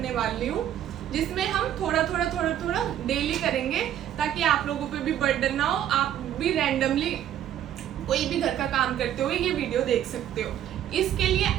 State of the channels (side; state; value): left; quieter; 11.0 dB